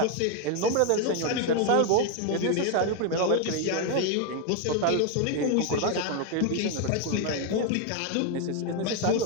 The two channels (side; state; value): both; different; correlation 0.01